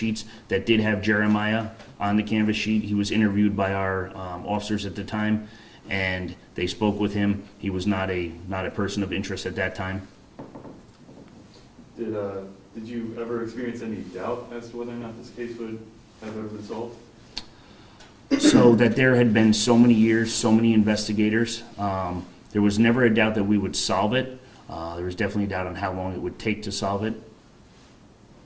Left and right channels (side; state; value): both; identical; correlation 1.00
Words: that did have Jeremiah on the canvas sheet. He was interviewed by our officers at the time, and they spoke with him. He was not a person of interest at that time. Did Did you ever experience any doubt as to whether or not this case would have a result? So that there had been so many years, so many investigators, there was never a doubt that we would solve it. There was definitely a doubt on how long it would take to solve it.